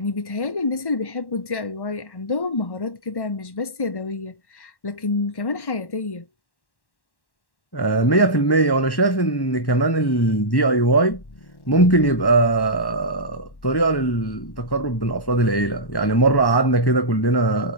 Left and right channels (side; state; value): right; late; 1.1 ms